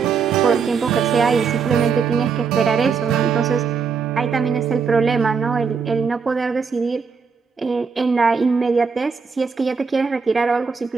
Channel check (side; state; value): left; quieter; 5.7 dB